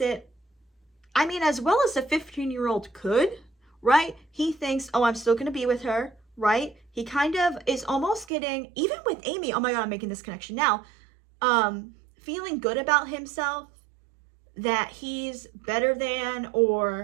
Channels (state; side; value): drops out; left; at 8.2 s